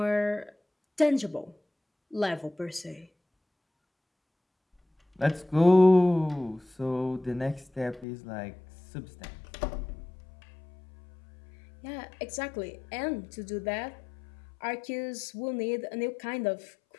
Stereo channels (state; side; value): drops out; right; at 8.1 s